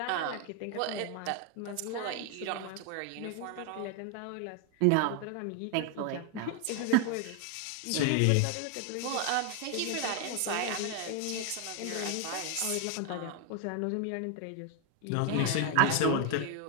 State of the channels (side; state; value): both; different; correlation 0.01